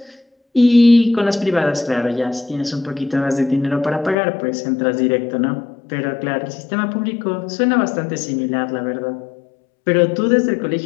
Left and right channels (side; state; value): right; drops out; at 4.2 s